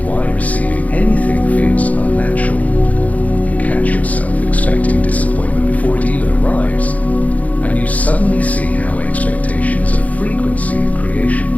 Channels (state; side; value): late; right; 0.072 ms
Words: why receiving anything feels unnatural. You catch yourself expecting disappointment before it even arrives, and you suddenly see how expectation is a frequency of creation.